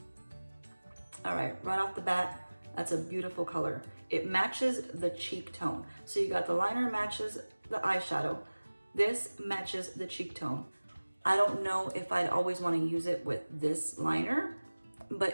All right, right off the bat, that's a beautiful color. It matches the cheek tone. So you got the liner matches the eyeshadow. This matches the cheek tone. I don't know if I'd always want to use it with this liner,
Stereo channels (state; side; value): inverted; both; correlation -1.00